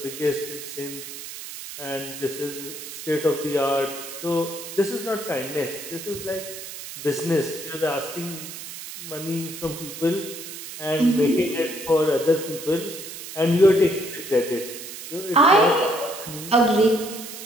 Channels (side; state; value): right; noise; hiss, 11 dB below the sound